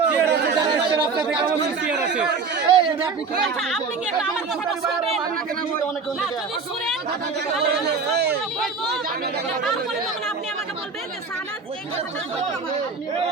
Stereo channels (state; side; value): quieter; left; 4.8 dB